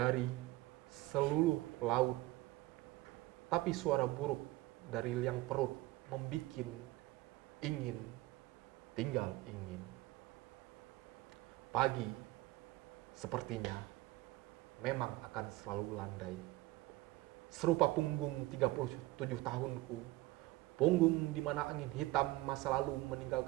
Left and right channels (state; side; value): quieter; left; 19.1 dB